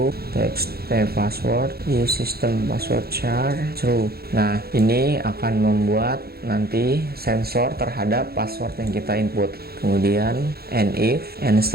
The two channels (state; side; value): late; left; 0.45 ms